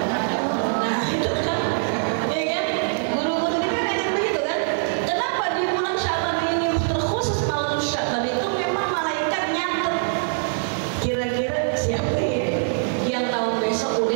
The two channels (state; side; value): silent; left; digital silence